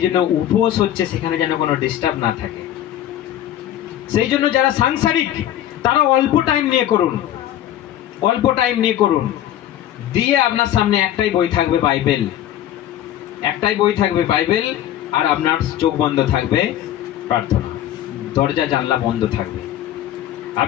জন্য উপোস হচ্ছে সেখানে যেন কোনো ডিস্টার্ব না থাকে। সেই জন্য যারা সাংসারিক তারা অল্প টাইম নিয়ে করুন, অল্প টাইম নিয়ে করুন। দিয়ে আপনার সামনে একটাই বই থাকবে বাইবেল, একটাই বই থাকবে বাইবেল, আর আপনার চোখ বন্ধ থাকবে প্রার্থনা, দরজা জানলা বন্ধ থাকবে।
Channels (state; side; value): quieter; right; 11.9 dB